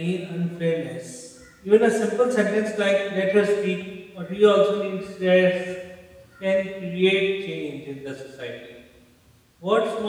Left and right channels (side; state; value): both; identical; correlation 1.00